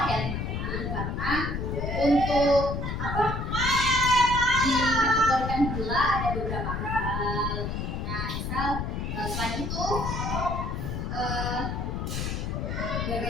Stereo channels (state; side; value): noise; left; rumble, 3 dB below the sound